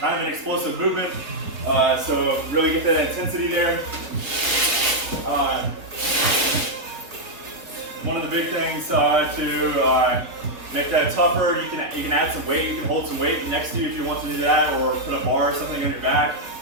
of an explosive movement, so really get that intensity there. One of the big things to make that tougher, you can add some weight, you can hold some weight next to you if you want to do that, or put a bar or something on your back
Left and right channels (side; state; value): left; late; 4.9 ms